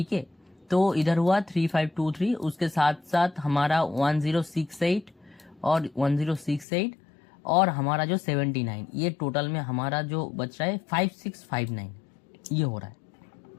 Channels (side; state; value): right; drops out; at 6.7 s